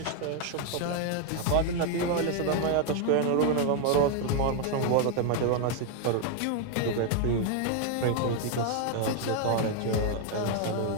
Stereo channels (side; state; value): both; different; correlation 0.01